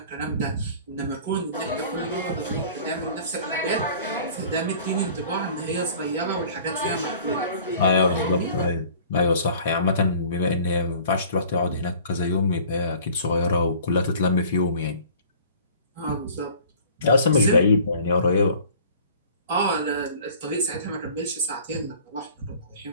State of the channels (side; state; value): both; inverted; correlation -0.48